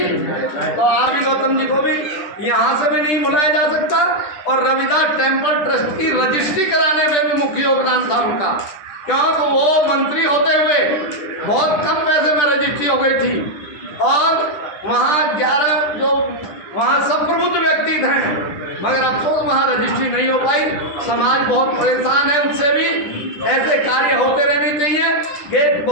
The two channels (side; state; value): right; late; 10 ms